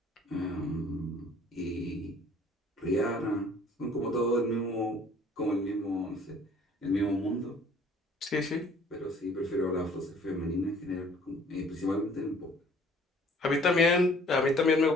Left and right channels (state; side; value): normal; both; correlation 0.55